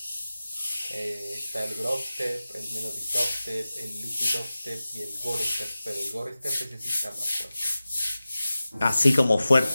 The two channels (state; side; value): inverted; both; correlation -0.96